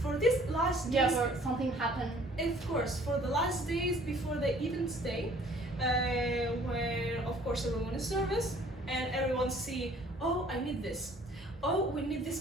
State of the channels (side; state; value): both; normal; correlation 0.54